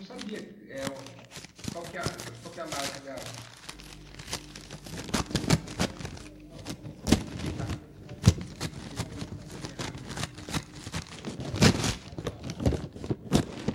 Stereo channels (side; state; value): both; identical; correlation 1.00